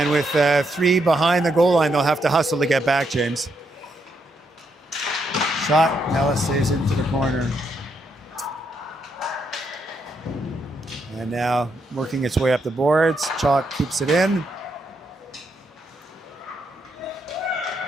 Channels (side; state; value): both; normal; correlation 0.78